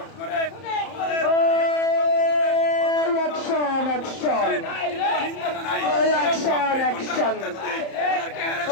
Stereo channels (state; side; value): late; right; 30 ms